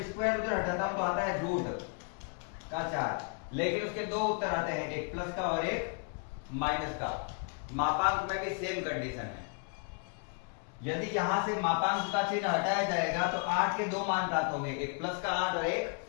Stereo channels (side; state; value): right; quieter; 38.7 dB